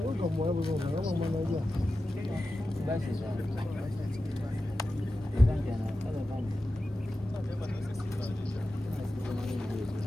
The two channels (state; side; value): normal; both; correlation 0.93